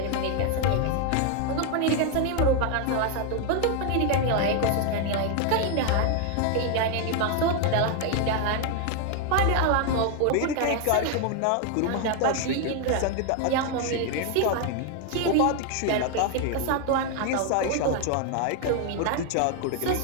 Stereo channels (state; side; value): different; both; correlation 0.01